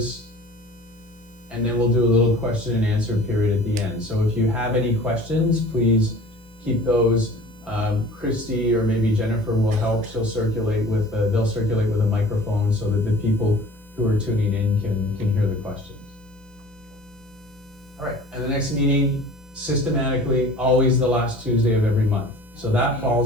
and then we'll do a little question and answer period at the end. So if you have any questions, please keep those. Christy or maybe Jennifer will help. They'll circulate with a microphone so that the people who are tuning in can hear the questions. All right, and the next meeting, systematically, always the last Tuesday of every month. So that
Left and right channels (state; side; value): normal; both; correlation 0.44